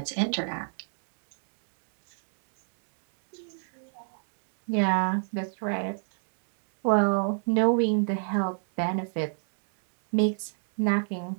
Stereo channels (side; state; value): left; silent; digital silence